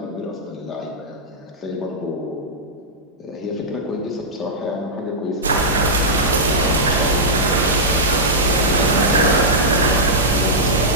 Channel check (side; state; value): both; normal; correlation -0.10